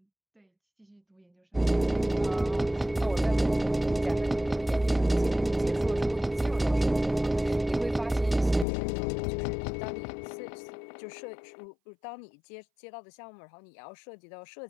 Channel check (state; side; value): drops out; right; at 8.7 s